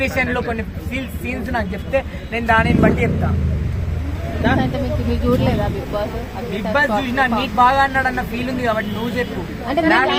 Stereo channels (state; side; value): identical; both; correlation 1.00